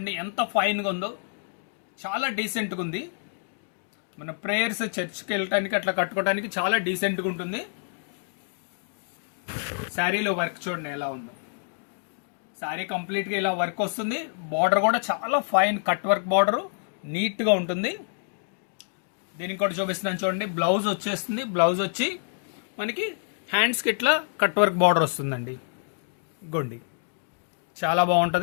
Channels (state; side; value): silent; right; digital silence